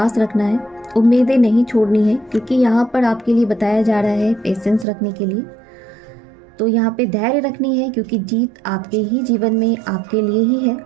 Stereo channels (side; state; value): left; drops out; at 4.9 s